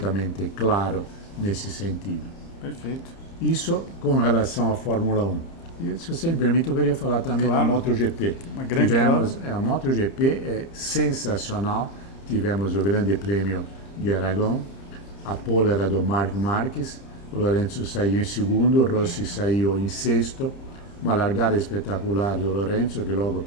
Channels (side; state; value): right; late; 30 ms